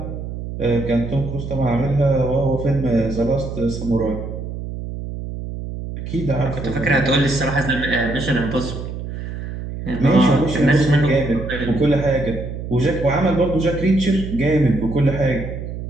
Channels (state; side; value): noise; right; hum, 7 dB below the sound